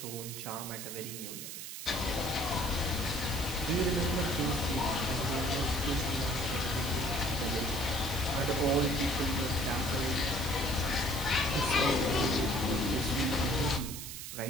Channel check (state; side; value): noise; right; hiss, 8 dB below the sound